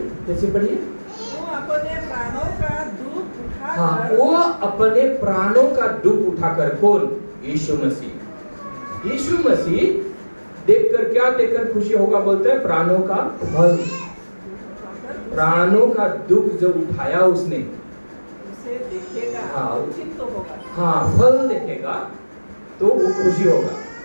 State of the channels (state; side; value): inverted; both; correlation -1.00